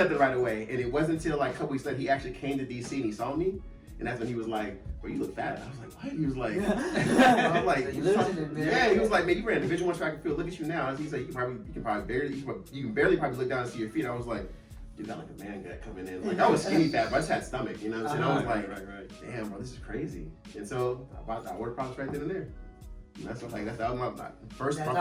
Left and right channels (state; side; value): identical; both; correlation 1.00